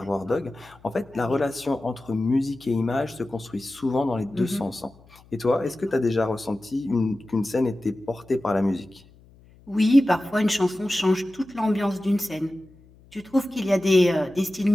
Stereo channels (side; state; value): left; noise; hum, 26 dB below the sound